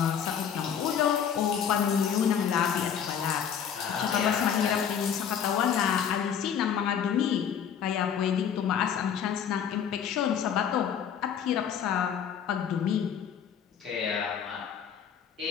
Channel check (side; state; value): right; quieter; 8.2 dB